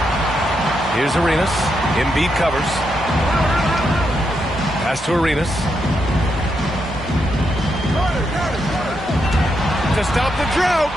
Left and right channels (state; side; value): normal; both; correlation 0.82